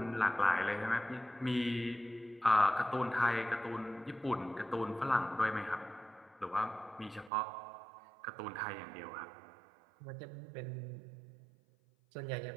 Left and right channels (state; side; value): drops out; left; at 7.3 s